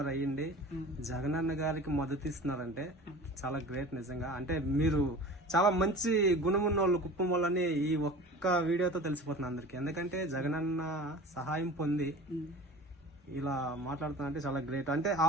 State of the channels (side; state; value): both; normal; correlation 0.39